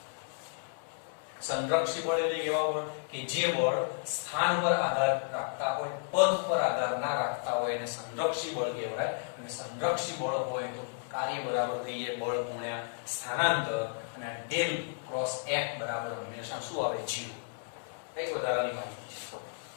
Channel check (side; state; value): right; silent; 56 dB below the other